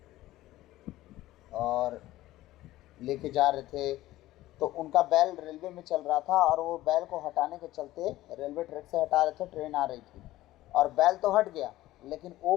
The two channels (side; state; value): right; quieter; 16.1 dB